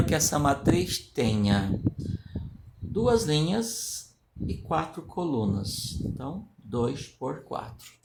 que essa matriz tenha 2 linhas e 4 colunas. Então, 2 por 4.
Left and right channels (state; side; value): identical; both; correlation 1.00